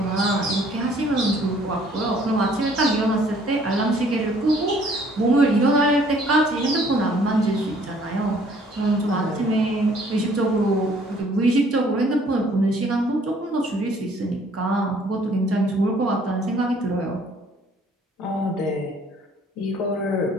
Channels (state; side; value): normal; both; correlation 0.59